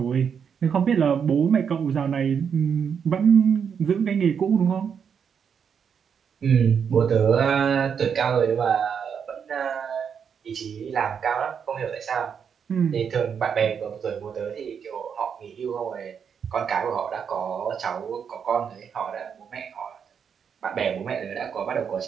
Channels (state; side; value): quieter; left; 7.1 dB